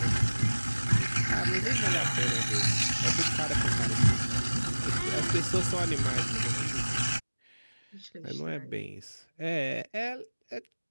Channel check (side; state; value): both; inverted; correlation -1.00